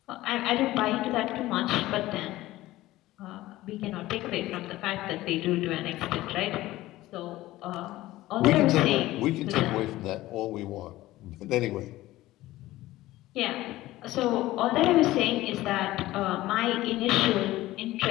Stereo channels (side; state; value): right; quieter; 16.7 dB